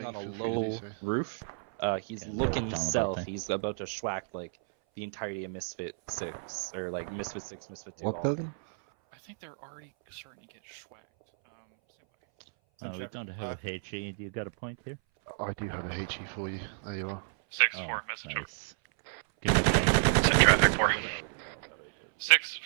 building, on a feel free to low do so. roof. He's looking south. He's about to schwack like the entirety of Misfit 6, or like Misfit 6, Misfit 2, What all of building? them. I think they're already starting to get schwacked. Stand by. We don't have a HE. Do you got a point here? I do have a HE for you. There you are. 6-4, message. Nice. Give me a point. There you go, mate.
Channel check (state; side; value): silent; left; 57 dB below the other